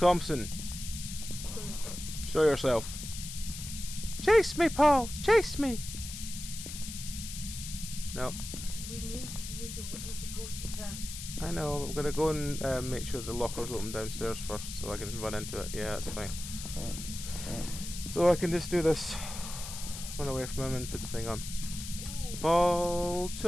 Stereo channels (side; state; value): left; noise; hiss, 9 dB below the sound